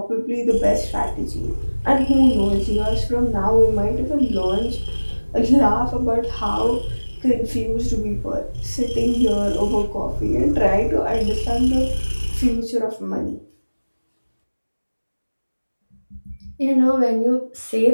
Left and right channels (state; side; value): inverted; both; correlation -1.00